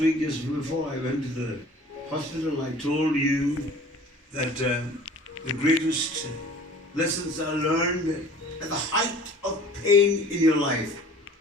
week, just before I went to the hospital, I told you that the greatest lessons are learned at the height of pain in your life.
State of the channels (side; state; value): both; normal; correlation 0.47